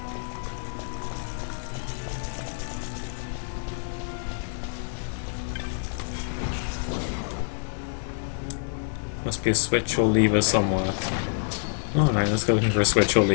must be a switch or lever somewhere. Alright, let's go looking for a switch or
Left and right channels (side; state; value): right; silent; digital silence